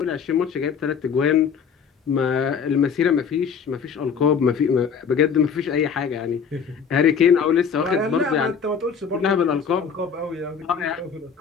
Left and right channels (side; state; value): right; quieter; 6.6 dB